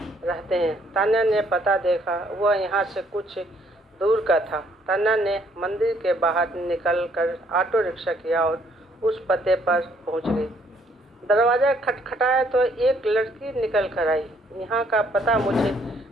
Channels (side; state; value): both; normal; correlation 0.67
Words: रहते हैं। तान्या ने पता देखा, वह यहाँ से कुछ दूर का था। तान्या ने मंदिर के बाहर निकलकर ऑटो रिक्शा किया और उस पते पर पहुँच गई। दरवाज़ा खटखटाया तो एक लड़की निकल कर आई। यहाँ का पता मुझे